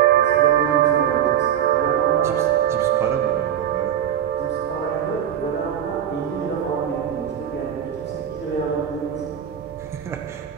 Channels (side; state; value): left; quieter; 9.7 dB